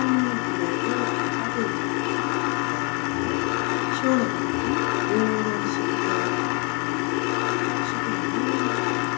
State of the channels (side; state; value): right; quieter; 33.8 dB